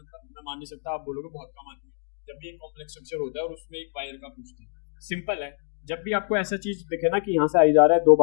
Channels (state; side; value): silent; right; digital silence